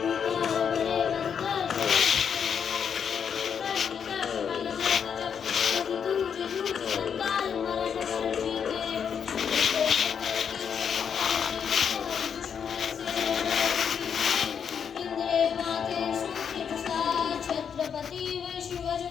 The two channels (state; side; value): quieter; right; 7.4 dB